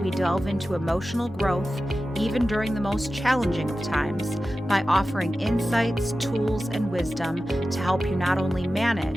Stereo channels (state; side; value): normal; both; correlation 0.94